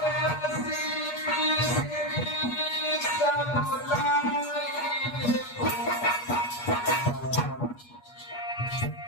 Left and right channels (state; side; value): late; right; 8.3 ms